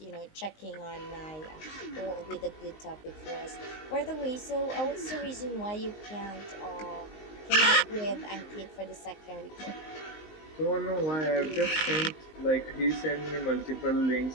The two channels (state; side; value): late; right; 19 ms